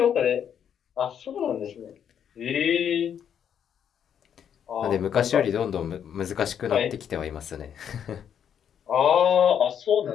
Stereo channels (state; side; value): quieter; right; 8.6 dB